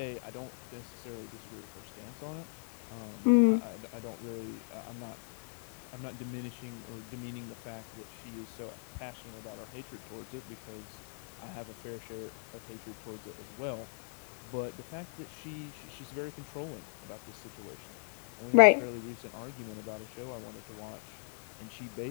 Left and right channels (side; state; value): right; silent; 53 dB below the other